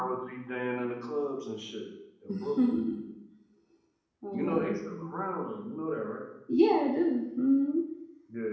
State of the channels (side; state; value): both; identical; correlation 1.00